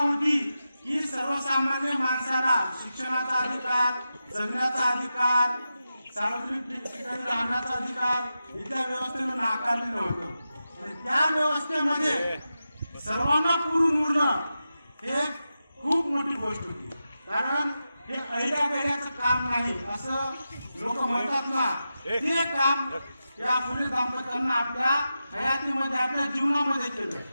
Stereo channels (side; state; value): both; inverted; correlation -0.91